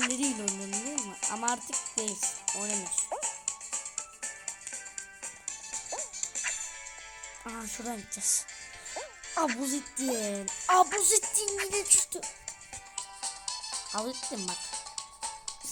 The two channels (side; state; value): both; identical; correlation 1.00